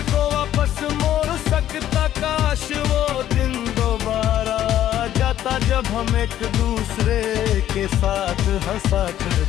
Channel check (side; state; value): right; quieter; 12.0 dB